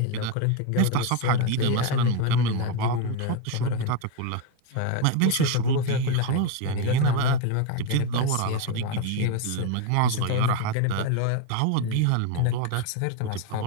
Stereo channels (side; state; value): both; different; correlation 0.02